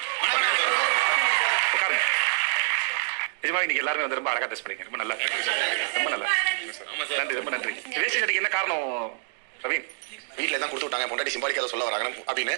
உட்காருங்க. நிஜமா இன்னைக்கு எல்லாருமே வந்து ரொம்ப அழகா ட்ரெஸ் பண்ணீங்க, ரொம்ப நல்லா, ரொம்ப நல்லா, நன்றி, ரொம்ப நன்றி. வேஷ்டி சட்டைக்கு என்ன காரணம் ரவீன்? வீட்டில் தான் கொடுத்து விட்டாங்க, பொண்டாட்டி சிம்பாலிக்காக சொல்ல வராங்க அப்படின்னு.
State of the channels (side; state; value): left; silent; digital silence